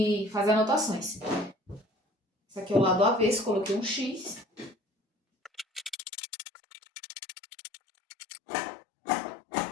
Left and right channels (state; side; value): drops out; right; at 6.0 s